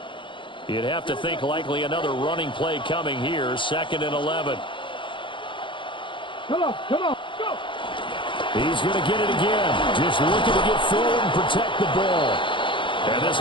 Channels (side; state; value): right; late; 0.24 ms